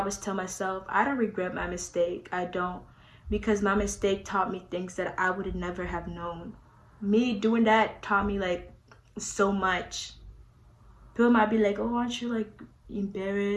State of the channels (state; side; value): identical; both; correlation 1.00